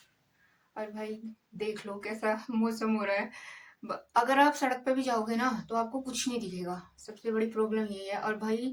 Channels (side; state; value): both; identical; correlation 1.00